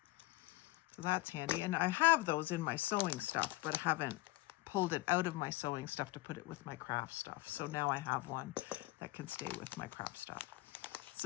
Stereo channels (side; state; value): right; quieter; 19.6 dB